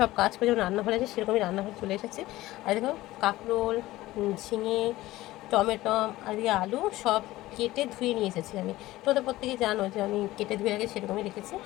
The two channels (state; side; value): quieter; right; 17.2 dB